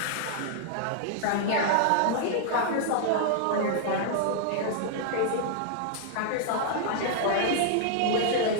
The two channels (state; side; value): different; both; correlation 0.00